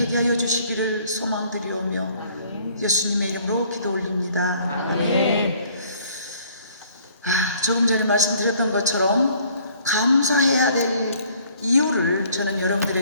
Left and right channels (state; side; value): inverted; both; correlation -0.59